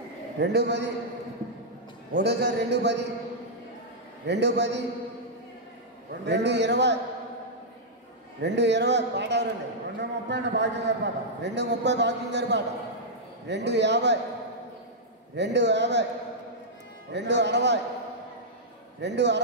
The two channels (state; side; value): normal; both; correlation -0.08